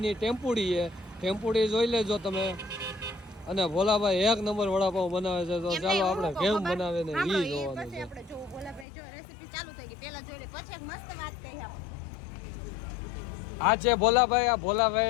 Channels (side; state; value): right; drops out; at 8.8 s